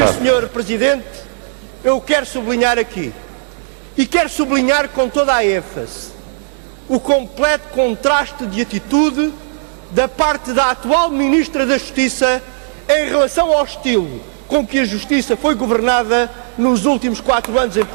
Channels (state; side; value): silent; left; 65 dB below the other